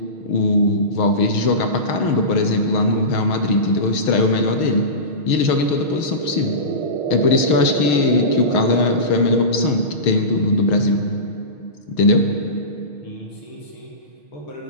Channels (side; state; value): right; late; 6.4 ms